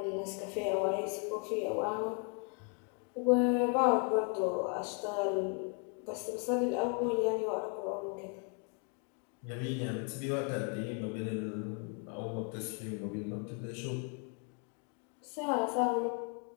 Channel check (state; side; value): quieter; right; 38.1 dB